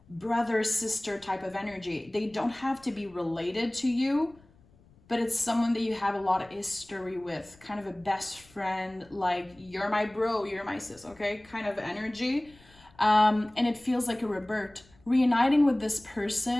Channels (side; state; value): left; noise; rumble, 28 dB below the sound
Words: brother, sister type of energy. They don't have to be related to you, but it's someone that you have a lot of history with, kind of a best friend, like you're my bro, you're my sis, okay, kind of energy. And it feels like a rebirth. Reuniting with this